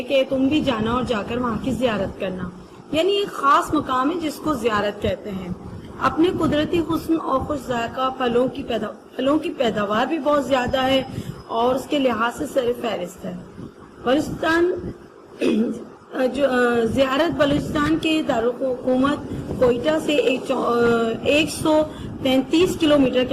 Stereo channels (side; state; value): both; identical; correlation 1.00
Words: کہ تم بھی جانا اور جا کر وہاں کی زیارت کرنا، یعنی ایک خاص مقام ہے جس کو زیارت کہتے ہیں۔ اپنے قدرتی حسن اور خوش ذائقہ پھلوں کی پیداوار بھی بہت زیادہ ہے اور اس کے لحاظ سے سر فہرست ہے۔ بلوچستان زیارت بلوچستان کے دارالحکومت کوئٹہ سے 133 کلومیٹر